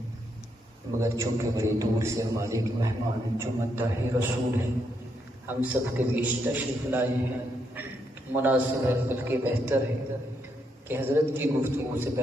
مگر چونکہ بڑی دور سے ہمارے ایک مہمان جو مداح رسول ہیں ہم سب کے بیچ تشریف لائے ہیں، مناسب ہے بلکہ بہتر ہے کہ حضرت کی گفتگو سے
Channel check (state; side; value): normal; both; correlation 0.78